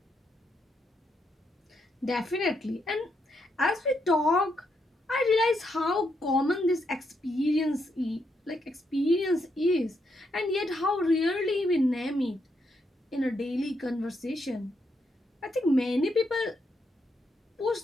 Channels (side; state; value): both; normal; correlation 0.79